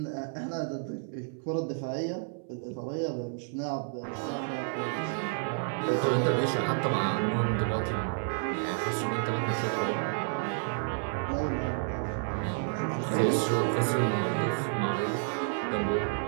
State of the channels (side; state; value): left; silent; 57 dB below the other